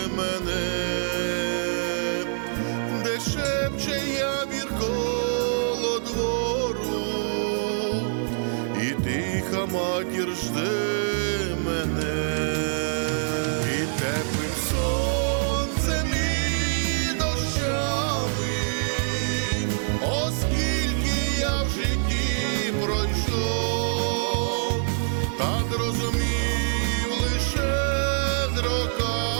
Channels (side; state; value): left; silent; 62 dB below the other